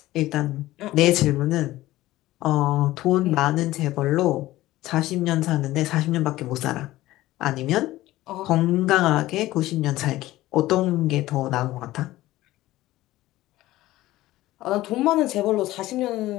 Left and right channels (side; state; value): right; quieter; 16.6 dB